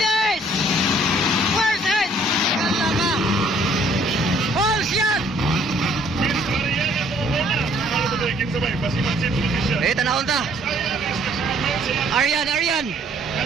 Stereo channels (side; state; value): both; normal; correlation 0.61